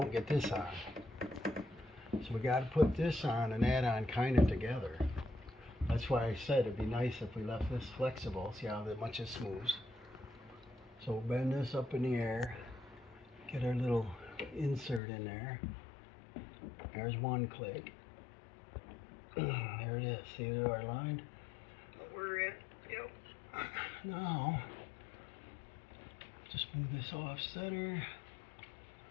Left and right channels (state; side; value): drops out; right; at 15.0 s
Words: get this on. So we got to put this on and that on kind of together. That's why I said it'd be nice if we left this flexible. See how much it smooths. So we'll bend this up in the air. Get our little insert in there. There's one click. There it is. See our line? We're in. Yep. Now, just move this off center.